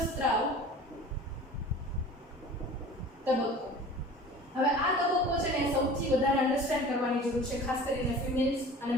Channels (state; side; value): normal; both; correlation 0.42